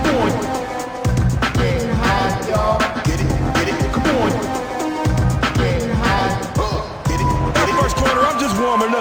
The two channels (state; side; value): identical; both; correlation 1.00